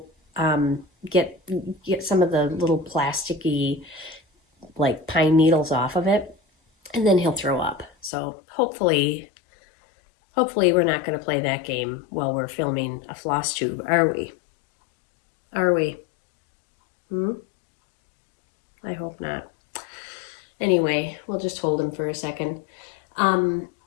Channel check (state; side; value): drops out; right; at 8.1 s